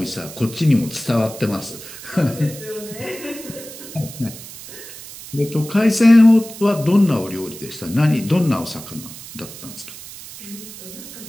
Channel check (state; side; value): noise; right; hiss, 14 dB below the sound